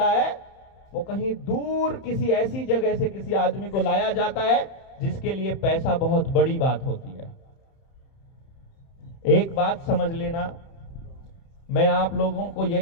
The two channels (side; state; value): right; late; 30 ms